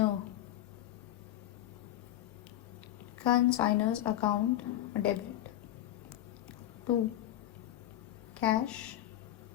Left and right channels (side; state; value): right; quieter; 13.1 dB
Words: consignor's account debit to cash